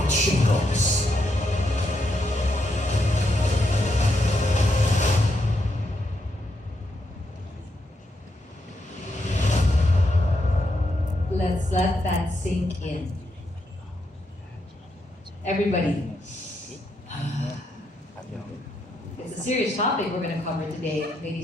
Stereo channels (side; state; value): both; normal; correlation 0.80